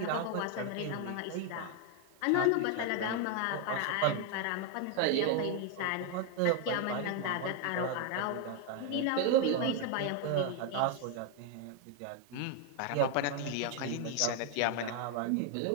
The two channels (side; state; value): both; different; correlation 0.01